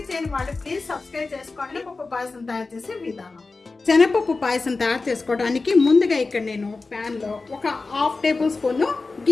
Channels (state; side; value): quieter; right; 3.8 dB